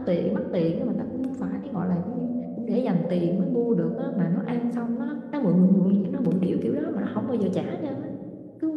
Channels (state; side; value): identical; both; correlation 1.00